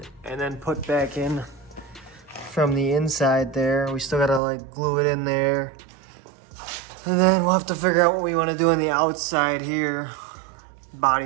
and then put back in from the inside there. We still gotta like glue it in there. And then we'll have to figure out what we wanna do on the outside here.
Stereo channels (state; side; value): drops out; left; at 4.4 s